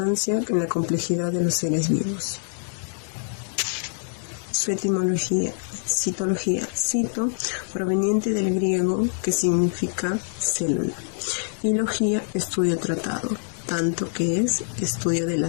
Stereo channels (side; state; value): right; silent; digital silence